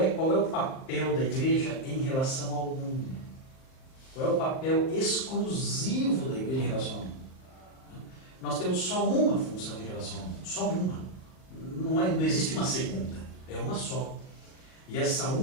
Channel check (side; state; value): right; late; 38 ms